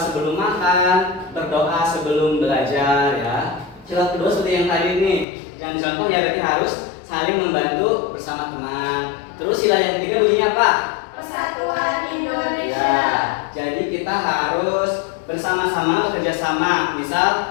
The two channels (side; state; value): right; drops out; at 5.2 s